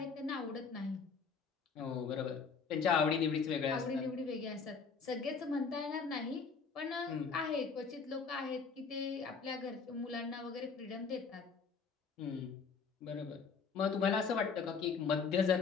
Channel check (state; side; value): quieter; right; 5.5 dB